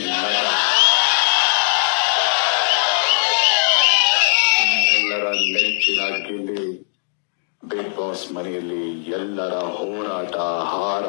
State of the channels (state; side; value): silent; right; 66 dB below the other